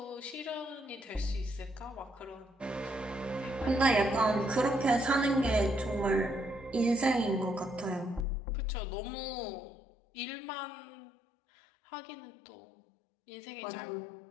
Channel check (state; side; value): drops out; right; at 8.2 s